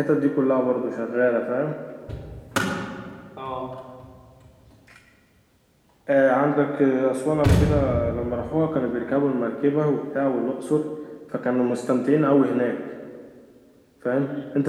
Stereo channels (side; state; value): both; identical; correlation 1.00